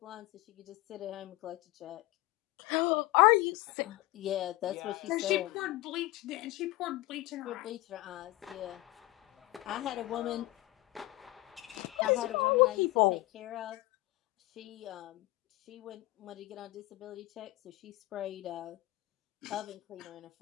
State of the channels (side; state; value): right; quieter; 19.0 dB